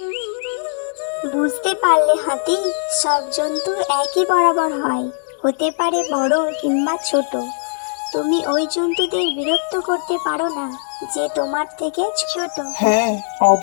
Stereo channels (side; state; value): right; silent; 66 dB below the other